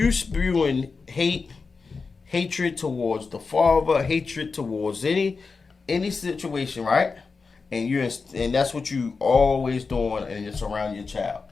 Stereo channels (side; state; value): right; quieter; 4.6 dB